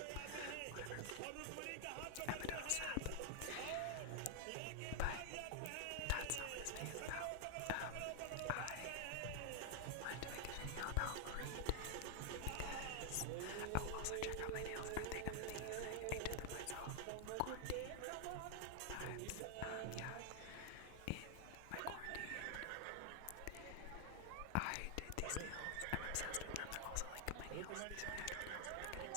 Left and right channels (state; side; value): different; both; correlation 0.00